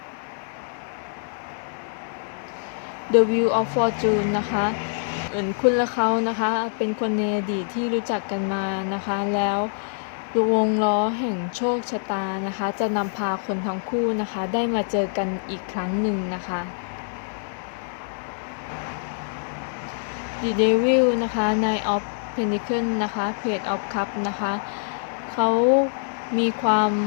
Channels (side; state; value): right; silent; 62 dB below the other